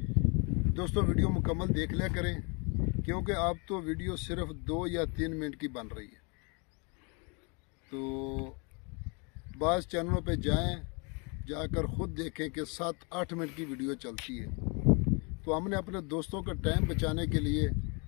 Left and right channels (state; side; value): quieter; right; 32.9 dB